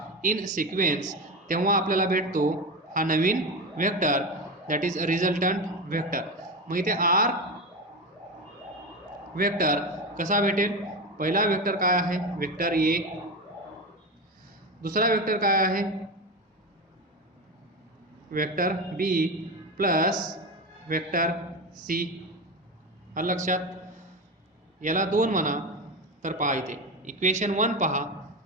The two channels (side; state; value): both; normal; correlation 0.20